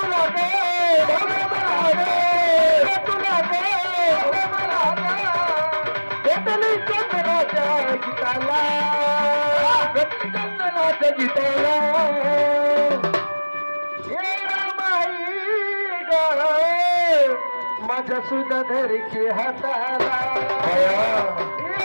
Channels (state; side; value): inverted; both; correlation -1.00